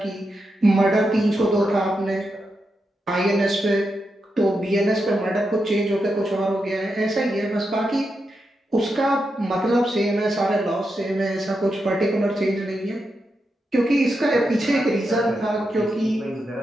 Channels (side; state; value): both; normal; correlation 0.86